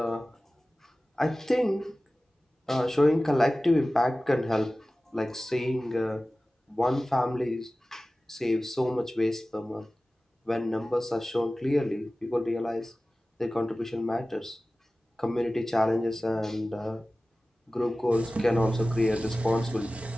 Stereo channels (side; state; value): both; normal; correlation 0.97